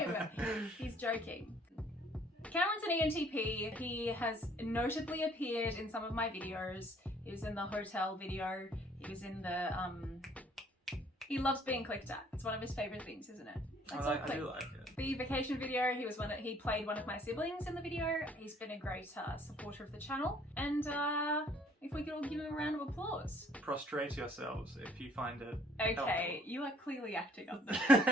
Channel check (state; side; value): normal; both; correlation 0.60